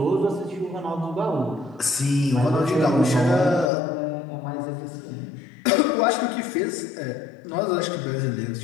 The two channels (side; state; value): right; drops out; at 3.7 s